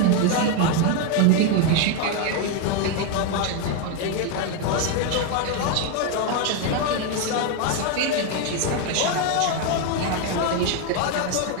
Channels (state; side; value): different; both; correlation 0.02